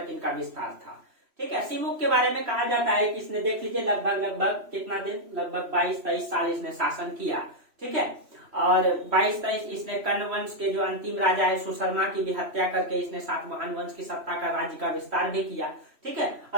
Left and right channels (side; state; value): left; late; 3.0 ms